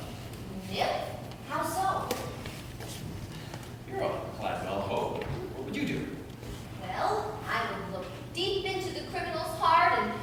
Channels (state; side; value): identical; both; correlation 1.00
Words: Yep. How so? you're a Cladwell Hope. What would you do? Well, I would look deep into the criminal's heart and